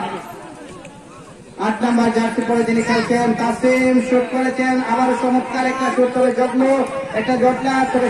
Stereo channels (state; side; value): identical; both; correlation 1.00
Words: 8 নম্বর জার্সি পরে তিনি খেলছেন তাসিম, শুট করেছেন আবার চমৎকার একটা শুট, তবে জগলো একটা জটলা, তবে